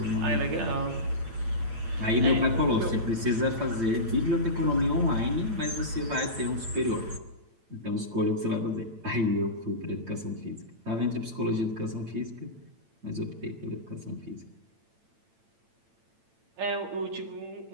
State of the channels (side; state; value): left; late; 8.9 ms